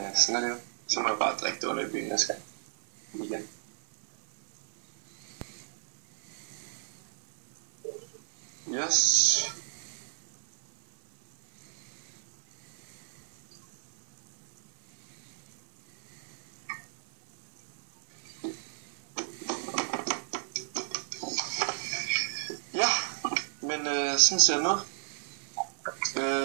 sådan er det jo. Så må jeg bare drikke det under i byen, jeg skal. Igen. Yes. Ja, men sådan ser det ud.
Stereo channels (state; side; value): silent; left; 56 dB below the other